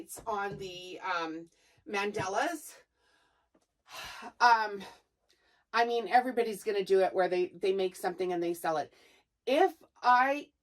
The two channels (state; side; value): identical; both; correlation 1.00